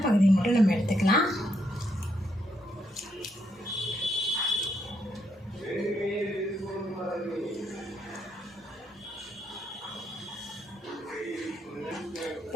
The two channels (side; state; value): both; normal; correlation 0.77